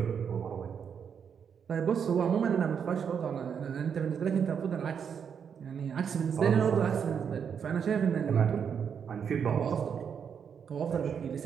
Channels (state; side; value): quieter; left; 7.3 dB